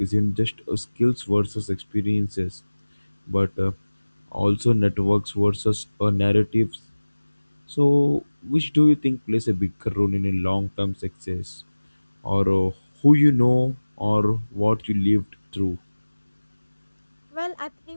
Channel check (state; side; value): inverted; both; correlation -1.00